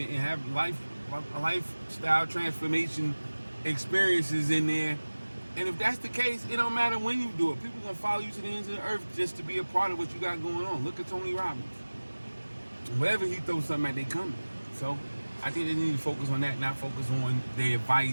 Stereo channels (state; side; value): inverted; both; correlation -1.00